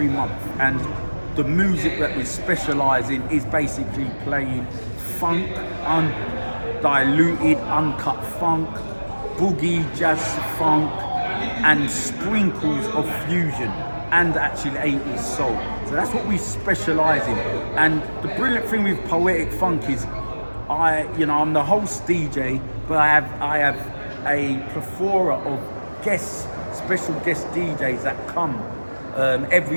month, and the music that we specialise in is basically playing funk, undiluted, uncut funk, boogie, jazz funk, and sprinkles of fusion, and actually 80s soul. So that's what we specialise in. And the brilliant thing with Poetic Funk is I'm the host DJ, but I have a plethora of special guest DJs that come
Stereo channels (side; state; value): both; inverted; correlation -1.00